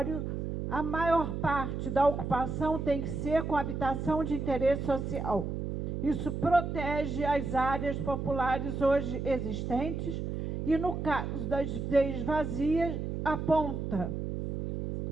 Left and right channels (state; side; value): noise; right; hum, 3 dB below the sound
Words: a maior parte da ocupação tem que ser com habitação de interesse social. Isso protege as áreas populares hoje existentes e, no caso das ZEIs vazias, aponta